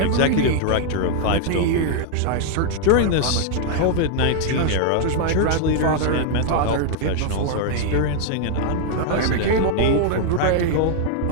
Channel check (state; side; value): different; both; correlation 0.00